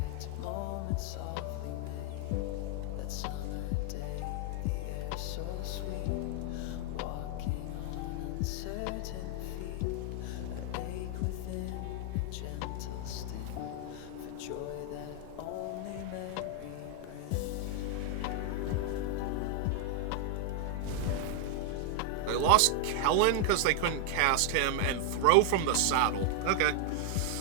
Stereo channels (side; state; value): both; different; correlation 0.00